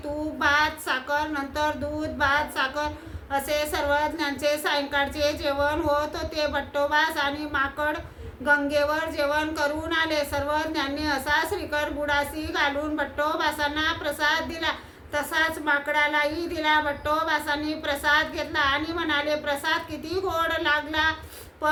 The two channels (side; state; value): both; identical; correlation 1.00